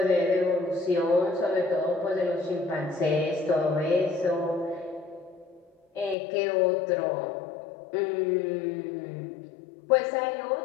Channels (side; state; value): right; drops out; at 6.2 s